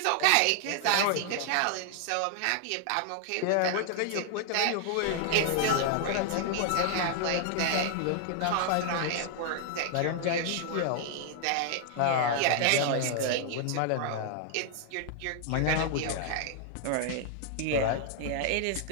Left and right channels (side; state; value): both; different; correlation 0.00